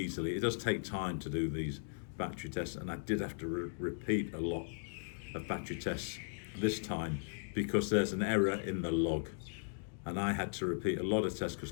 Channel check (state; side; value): silent; right; digital silence